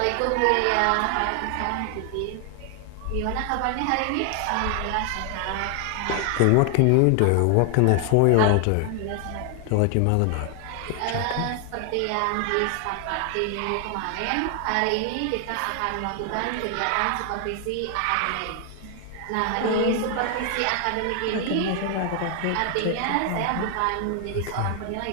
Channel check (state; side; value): different; both; correlation 0.00